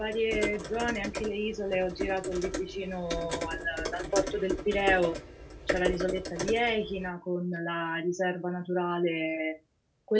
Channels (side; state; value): both; identical; correlation 1.00